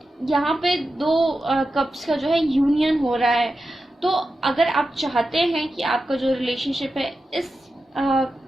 यहाँ पे 2 कप्स का जो है यूनियन हो रहा है। तो अगर आप चाहते हैं कि आपका जो रिलेशनशिप है इस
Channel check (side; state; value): both; normal; correlation 0.91